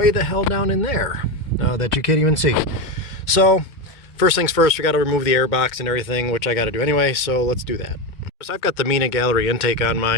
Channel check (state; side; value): late; right; 2.2 ms